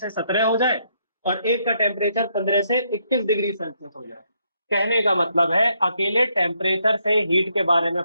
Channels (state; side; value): inverted; both; correlation -0.74